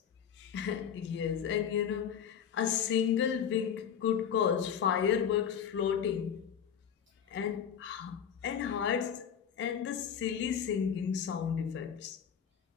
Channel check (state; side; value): quieter; right; 8.2 dB